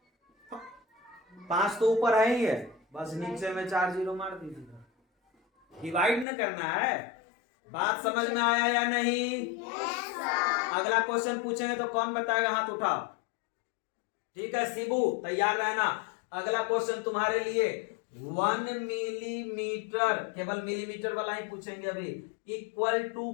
5 तो ऊपर है ही है, बस नीचे में 4 जीरो मार दीजिए, डिवाइड न करना है। बात समझ में आया या नहीं। अगला क्वेश्चन पूछेंगे तो कौन बताएगा, हाथ उठाओ, ठीक है शिबू तैयार रहना। अगला क्वेश्चन तुम्हारे लिए 1 मिलीमीटर, केवल मिलीमीटर वाला ही पूछेंगे अभी, इक्वल टू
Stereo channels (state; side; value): drops out; right; at 6.2 s